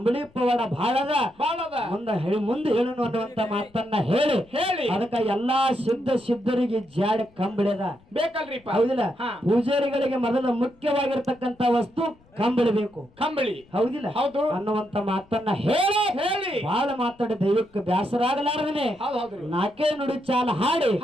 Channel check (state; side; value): noise; left; rumble, 30 dB below the sound